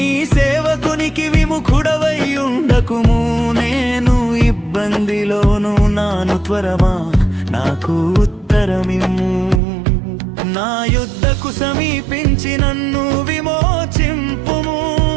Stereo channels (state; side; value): drops out; left; at 9.6 s